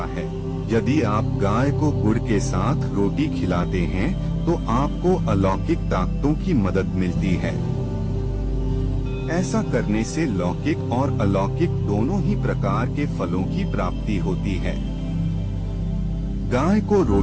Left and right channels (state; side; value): identical; both; correlation 1.00